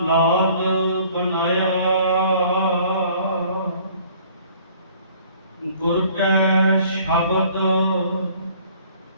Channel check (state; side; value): inverted; both; correlation -0.56